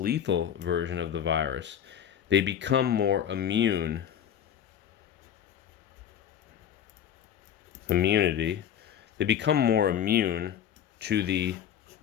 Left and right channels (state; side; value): quieter; right; 9.3 dB